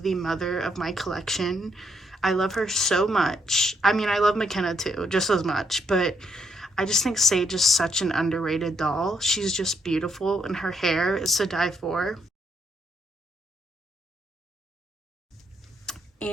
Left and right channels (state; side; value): normal; both; correlation 0.75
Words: the mother of my collection. I love her so much. I mean, I love McKenna too, just as much, but I just think Sage is such an underrated doll. She's just beautiful, and her hair is to die for.